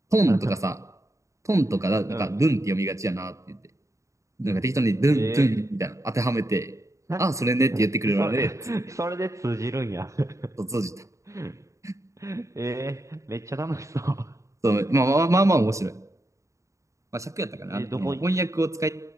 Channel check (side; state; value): left; late; 0.15 ms